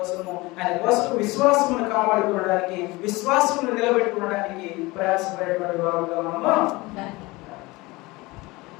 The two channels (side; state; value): right; quieter; 22.3 dB